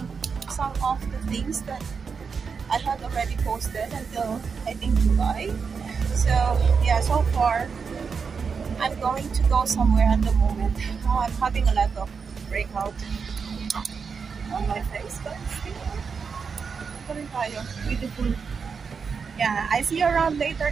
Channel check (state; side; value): quieter; left; 5.7 dB